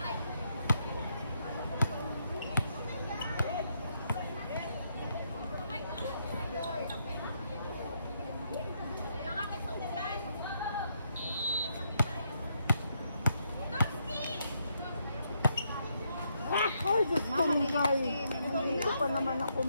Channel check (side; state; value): both; inverted; correlation -0.77